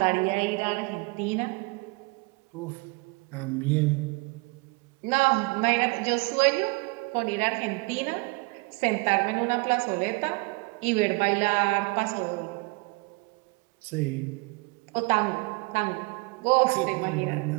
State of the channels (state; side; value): quieter; left; 27.7 dB